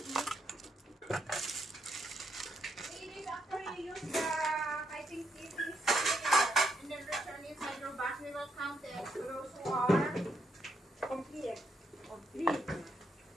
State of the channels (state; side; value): normal; both; correlation 0.78